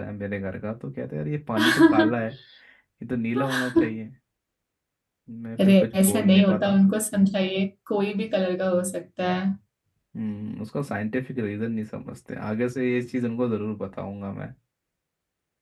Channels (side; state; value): both; identical; correlation 1.00